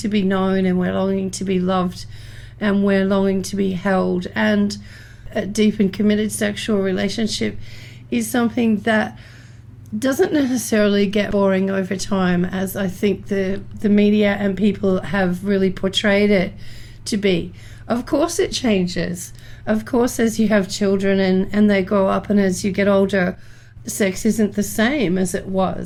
be known, and we're longing to be loved, and we're longing to be held. And a deep and committed sexual relationship is something that doesn't necessarily get boring over time, as I think the media and people have really portrayed it to be. Of course it changes. Of course, as you have children and they grow up, and as you get older, sex isn't the same as it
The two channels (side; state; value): both; identical; correlation 1.00